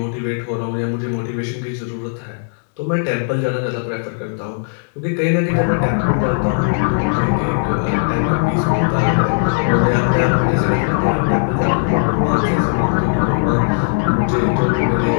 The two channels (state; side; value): silent; right; digital silence